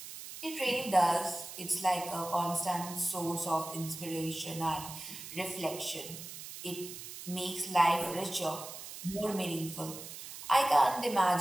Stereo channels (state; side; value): noise; right; hiss, 11 dB below the sound